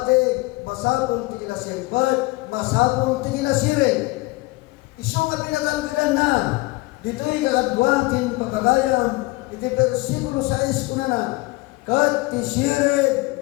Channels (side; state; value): right; quieter; 22.4 dB